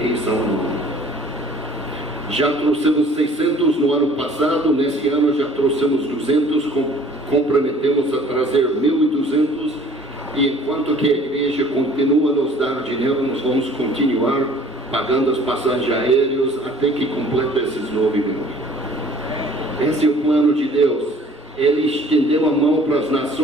Salomão. Já trouxemos 600 no ano passado, nesse ano já trouxemos 200, comprometemos a trazer 1.200, e enquanto que a igreja continua a nos dar dinheiro, nós vamos continuar pagando as passagens aéreas até que complete esses 9 mil. Esse é o plano de Deus. Ele estendeu a mão para as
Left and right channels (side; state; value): both; normal; correlation 0.52